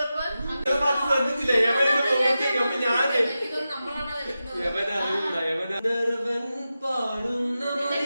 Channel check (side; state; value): both; inverted; correlation -0.92